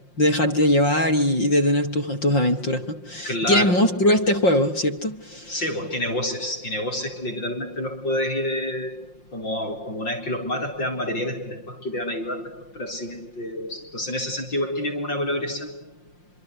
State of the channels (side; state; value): right; late; 5.7 ms